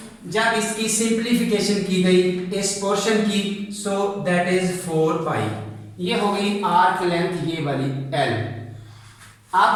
जब इसकी सिंप्लीफिकेशन की गई इस पोर्शन की, सो दैट इज 4 पाई। ये हो गई आर्क लेंथ ये वाली L।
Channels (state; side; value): identical; both; correlation 1.00